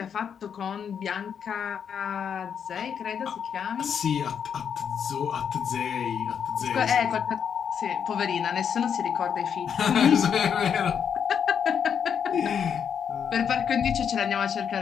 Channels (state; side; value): quieter; right; 7.6 dB